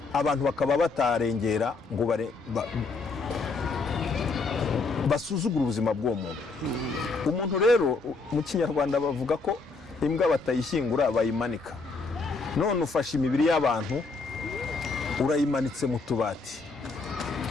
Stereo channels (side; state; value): right; quieter; 4.0 dB